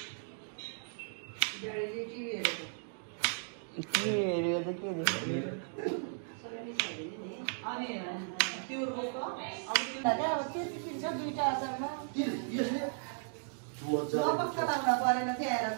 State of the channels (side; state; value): left; silent; digital silence